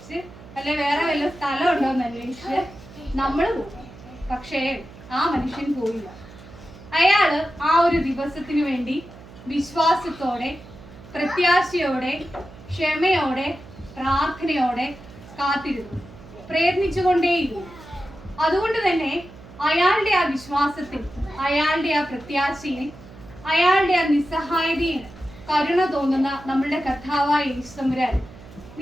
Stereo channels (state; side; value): noise; right; hum, 19 dB below the sound